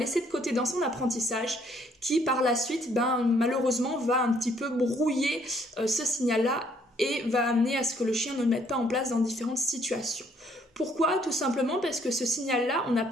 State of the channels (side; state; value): both; normal; correlation 0.65